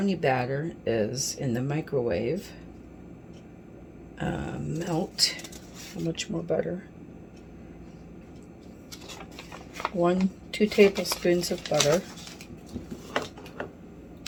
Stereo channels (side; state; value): both; identical; correlation 1.00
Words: batter is in the microwave. Melt, how much more butter? 2 tablespoons of butter.